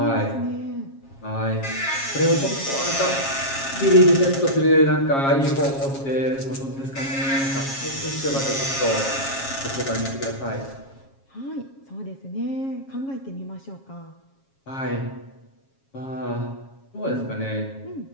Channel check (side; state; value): right; late; 7.3 ms